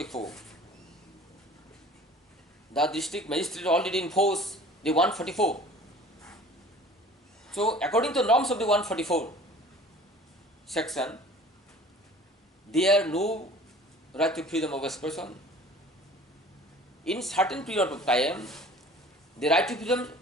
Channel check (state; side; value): normal; both; correlation 0.47